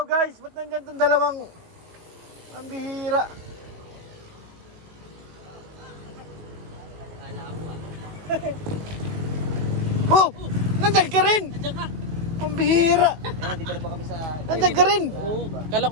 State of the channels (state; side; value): late; left; 18 ms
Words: guys! Ba't nandyan itong dalawang ang bihira? Kala mo, ah. Oh! Nandyan ka rin! Nandiyan ka! Pambihira! Dito na pa kami sa... Nandyan ka rin! Oo. Kala